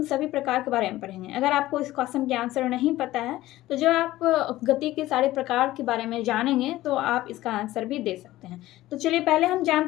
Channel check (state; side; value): quieter; right; 16.2 dB